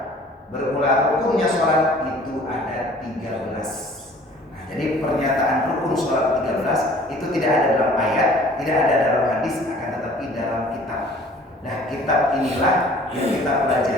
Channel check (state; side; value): normal; both; correlation 0.51